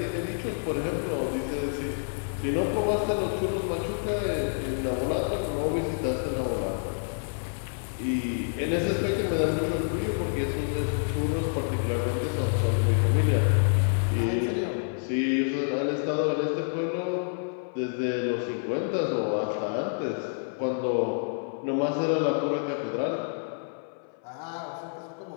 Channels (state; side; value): silent; right; 57 dB below the other